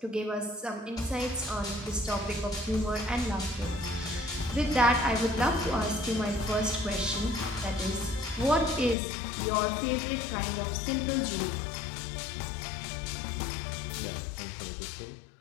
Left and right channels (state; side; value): drops out; right; at 9.0 s